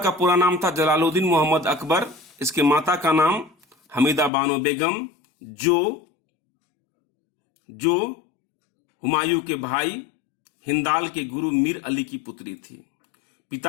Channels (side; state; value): right; drops out; at 4.3 s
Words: पूरा नाम था जलालुद्दीन मोहम्मद अकबर। इसके माता का नाम हमीदा बानो बेगम, जो हुमायूं के भाई हिंदाल के गुरु मीर अली की पुत्री थी।